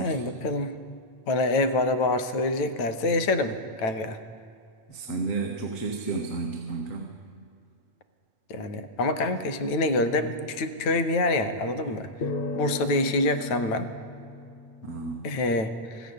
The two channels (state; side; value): late; right; 9.1 ms